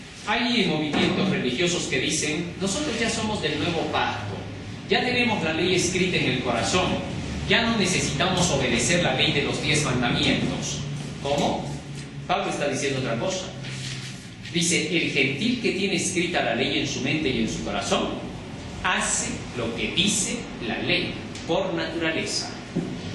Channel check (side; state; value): both; identical; correlation 1.00